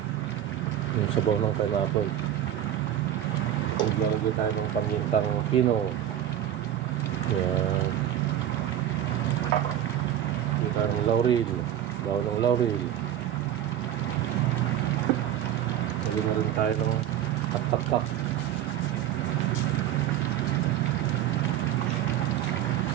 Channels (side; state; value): left; quieter; 11.2 dB